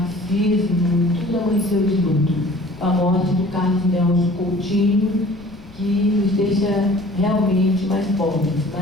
tudo amanheceu de luto. A morte do Carlos Nelson Coutinho, que nos deixa realmente mais pobres,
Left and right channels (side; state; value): left; noise; rumble, 21 dB below the sound